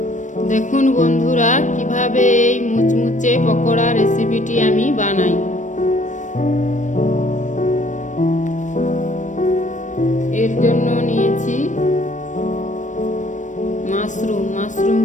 দেখুন বন্ধুরা, কিভাবে এই মুচমুচে পকোড়া রেসিপিটি আমি বানাই। এর জন্য নিয়েছি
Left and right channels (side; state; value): right; late; 0.36 ms